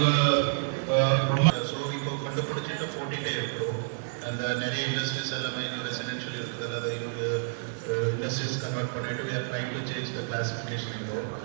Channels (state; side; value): silent; left; digital silence